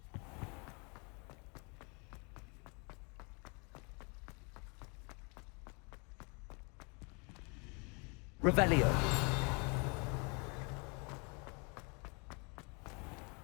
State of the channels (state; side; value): quieter; right; 33.1 dB